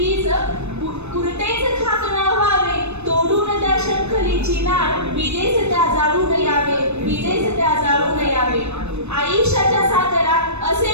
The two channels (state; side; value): late; left; 0.81 ms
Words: पुरतेच खाक न व्हावे, तोडून त्या शंखलीची नाळ विजेच त्या जाळून यावे, विजेच त्या जाळून यावे. आयुष्याच्या सागरात